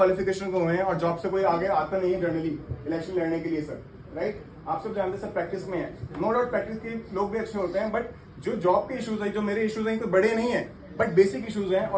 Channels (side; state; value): both; identical; correlation 1.00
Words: को हुए हैं और जॉब से कोई आगे आता नहीं है जनरली इलेक्शन लड़ने के लिए सर, राइट? आप सब जानते हैं सर प्रैक्टिस में है, नो डाउट प्रैक्टिस के लोग भी अच्छे होते हैं, बट जो जॉब के इश्यूज है, जो मेरे इश्यूज हैं, तो बड़े नहीं है बट बेसिक इश्यूज हैं